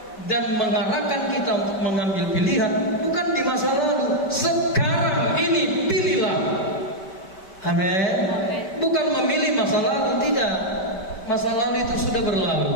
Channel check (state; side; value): late; right; 5.1 ms